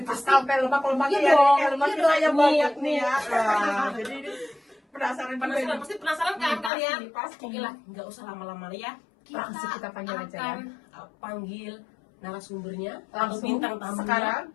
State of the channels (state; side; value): drops out; right; at 6.7 s